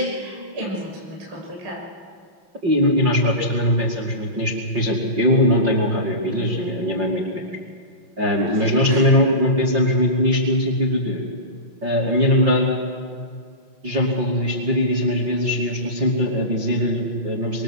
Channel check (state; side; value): late; left; 5.7 ms